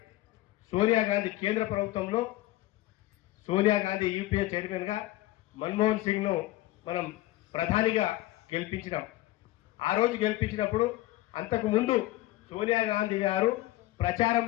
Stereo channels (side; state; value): right; quieter; 16.8 dB